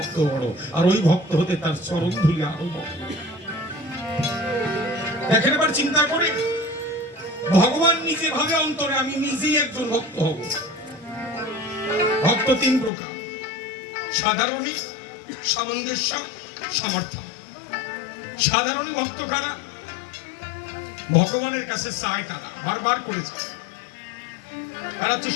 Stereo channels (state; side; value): drops out; right; at 12.9 s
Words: বড়, আর ওই ভক্ত হতে তার চরণ ধুলি আরো বড়। দেখেন এবার চিন্তা করে, ভগবান নিজে ভাবে অন্তরে আমি নিজেই একজন ভক্ত হব। ভক্ত 3 প্রকার, সাধারণী, সামঞ্জস্য, সমর্থন। সাধারণী ভক্ত কারা? ভগবানের কাছে চায় তারা, বারবার করেছে, তারা হচ্ছে